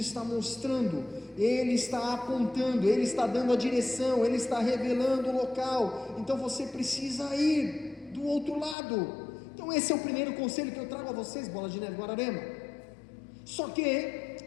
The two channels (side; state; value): right; drops out; at 8.8 s